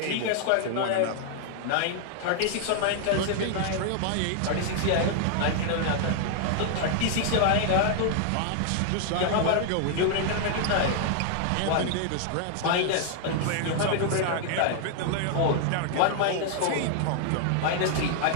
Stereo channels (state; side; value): different; both; correlation 0.00